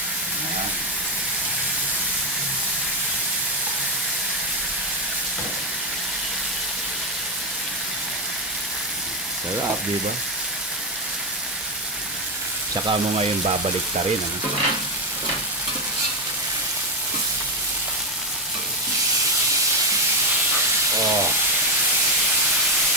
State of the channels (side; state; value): both; normal; correlation 0.08